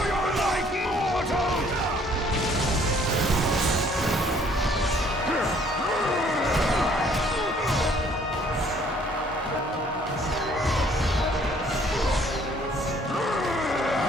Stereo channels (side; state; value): both; normal; correlation 0.60